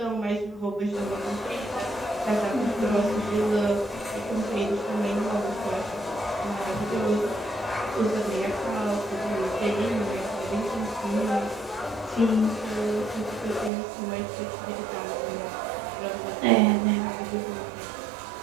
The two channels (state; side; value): drops out; left; at 13.7 s